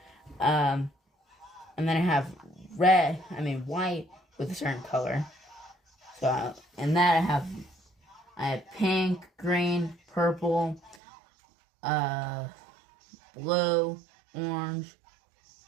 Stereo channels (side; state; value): left; drops out; at 11.0 s